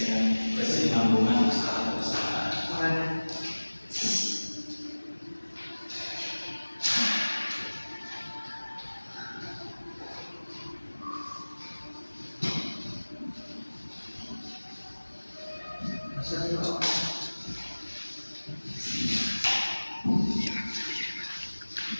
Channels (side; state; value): both; inverted; correlation -1.00